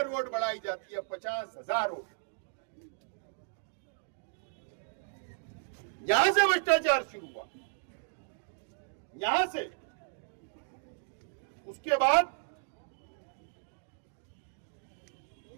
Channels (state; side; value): silent; left; digital silence